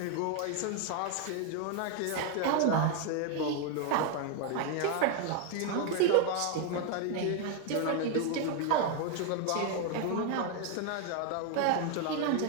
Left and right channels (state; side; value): different; both; correlation 0.01